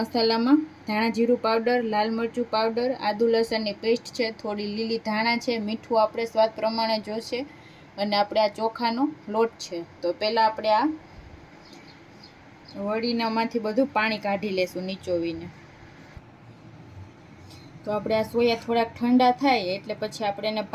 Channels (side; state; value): both; identical; correlation 1.00